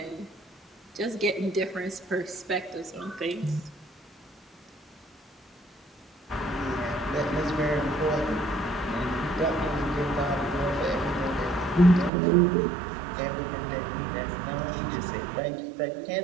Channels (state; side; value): drops out; left; at 12.1 s